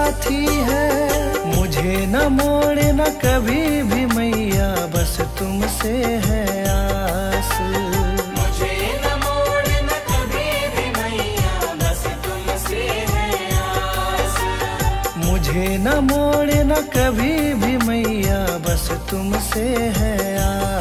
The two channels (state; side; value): identical; both; correlation 1.00